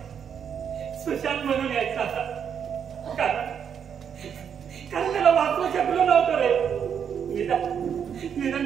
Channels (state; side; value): quieter; left; 7.8 dB